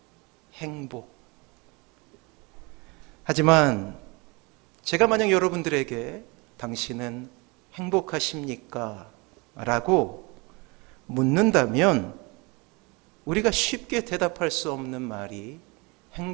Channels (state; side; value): quieter; left; 27.7 dB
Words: 행복. 하지만 제가 만약 여러분들에게 당신은 행복하십니까? 라고 묻는다면 우리가 쉽게 대답할 수 없는 말이